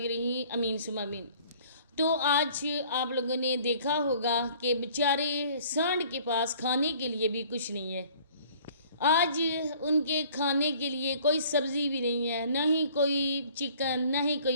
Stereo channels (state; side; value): inverted; both; correlation -0.54